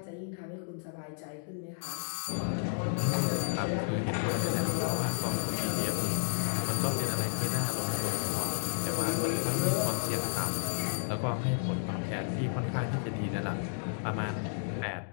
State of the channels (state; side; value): silent; right; digital silence